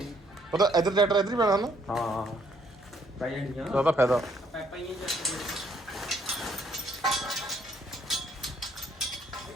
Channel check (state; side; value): normal; both; correlation 0.67